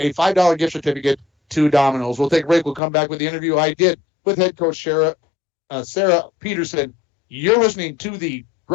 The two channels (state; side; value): drops out; right; at 2.8 s